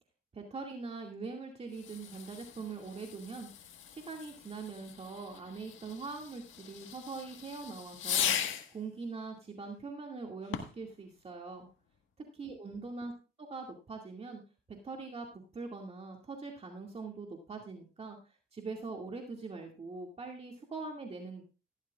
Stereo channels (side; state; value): both; normal; correlation 0.30